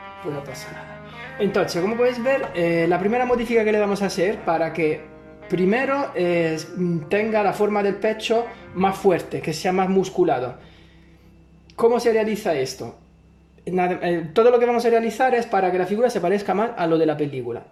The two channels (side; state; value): both; identical; correlation 1.00